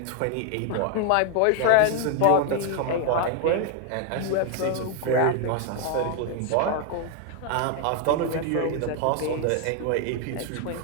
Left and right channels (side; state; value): both; different; correlation 0.00